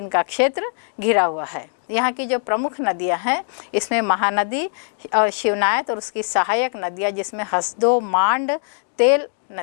का क्षेत्र घिरा हुआ है। यहाँ की जो प्रमुख नदियाँ हैं, इसमें महानदी और शिवनायत और उसकी सहायक नदियाँ जिसमें हसदो, मांड, तेल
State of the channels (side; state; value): right; silent; 65 dB below the other